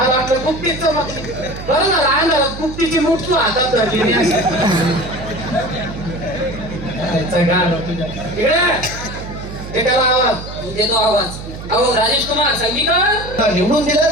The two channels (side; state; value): right; noise; hum, 11 dB below the sound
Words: वाटलं गुप्तीच चमकली बरं ना लहान गुप्तीची मूठ तू हातात धरली त्याला आवाज देतो आवाज अहो राजेश कुमार संगीकर निवडून दिलं